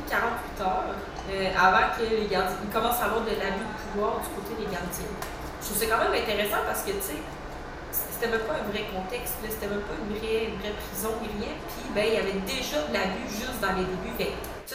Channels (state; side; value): identical; both; correlation 1.00